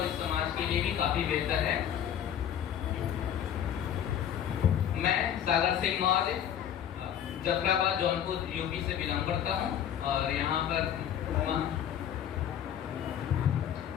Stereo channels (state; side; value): quieter; right; 9.7 dB